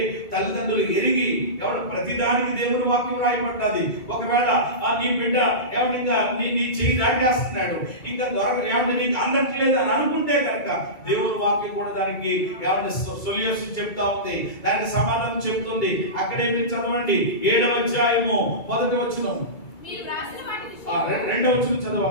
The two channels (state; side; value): late; right; 2.3 ms